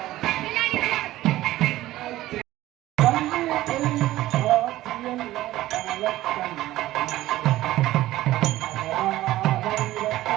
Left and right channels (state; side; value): quieter; left; 15.7 dB